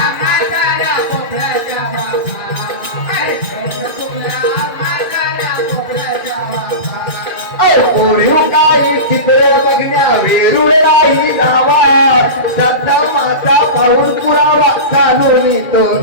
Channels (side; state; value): right; late; 2.5 ms